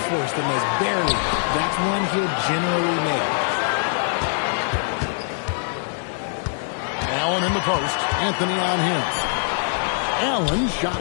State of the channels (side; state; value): right; silent; 64 dB below the other